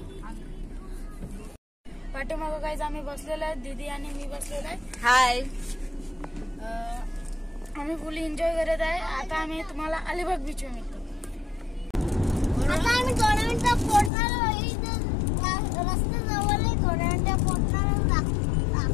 पाठीमागं गाइज आम्ही बसलेलो आहे, दीदी आणि मी बसलेलो आहे। हाय, आम्ही फुल एन्जॉय करत आहे। आता आम्ही तुम्हाला अलिबाग बीच वर मिळतो। आता आम्ही थोड्या मिनिटात पोहोचणार आहे। रस्ता जवळ आहे, थोड्या मिनिटात पोहोचणार आहे।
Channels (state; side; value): drops out; right; at 14.1 s